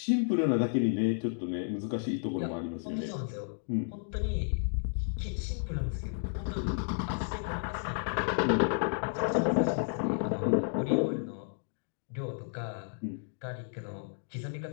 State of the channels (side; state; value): right; silent; digital silence